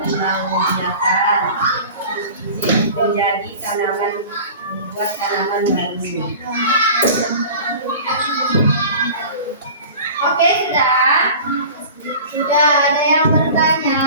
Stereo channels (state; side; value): inverted; both; correlation -0.39